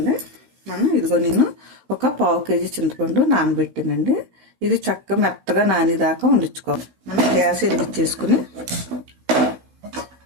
నేను ఒక 1/2 కేజీ చింతపండు నానబెట్టానండి. ఇది చక్కగా మెత్తగా నానేదాకా వండించుకోవాలి. మనం గ్యాస్ వెలిగించేసుకుని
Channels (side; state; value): left; late; 16 ms